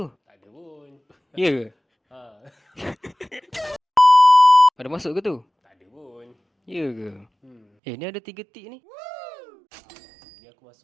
Tak ada pun. Ya ke? Ha, Ada masuk ke tu? tak ada pun. Ya ke? Ni ada 3 tik ni. Ni aku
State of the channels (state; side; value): drops out; left; at 7.6 s